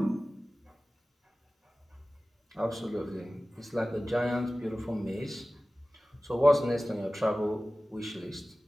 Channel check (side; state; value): both; normal; correlation 0.97